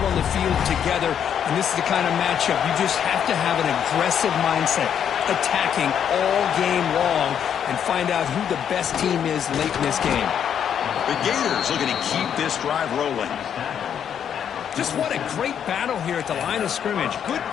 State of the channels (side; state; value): right; quieter; 8.7 dB